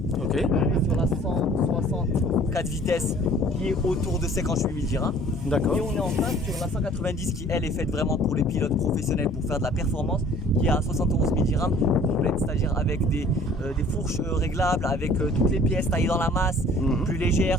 Ok. Sur la 164 vitesses qui est autour de 58 000 dirhams. D'accord. Et on est en face sur la 190 qui elle est faite vraiment pour les pilotes professionnels pour faire de la performance qui est à 71 000 dirhams complète, c'est-à-dire avec des fourches réglables, avec toutes les pièces taillées dans la masse, plus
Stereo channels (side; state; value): both; normal; correlation 0.52